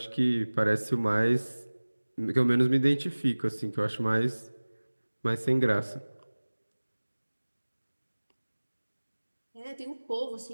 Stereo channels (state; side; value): inverted; both; correlation -1.00